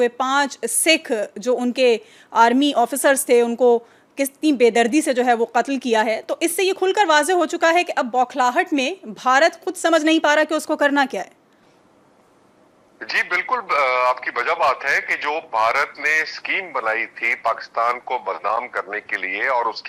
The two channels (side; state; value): both; identical; correlation 1.00